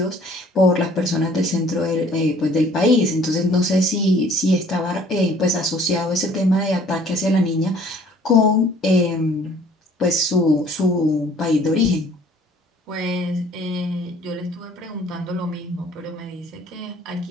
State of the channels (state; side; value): normal; both; correlation 0.55